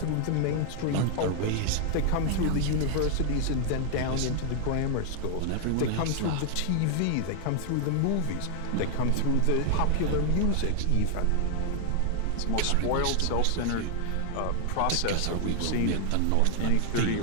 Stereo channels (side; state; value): both; different; correlation 0.00